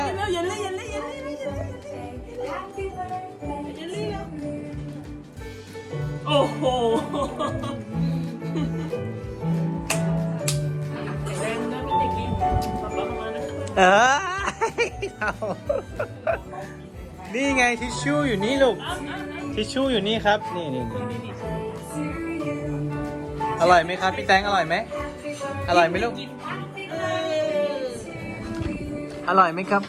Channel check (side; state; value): both; identical; correlation 1.00